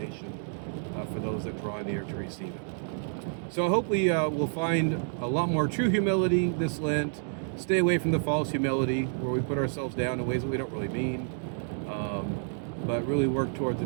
for those that draw near to receive it. So I hope we will find a lot more true humility this Lent. Stay away from the false humility where we put ourselves down in ways that we don't really mean, but really work towards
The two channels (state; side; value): silent; left; digital silence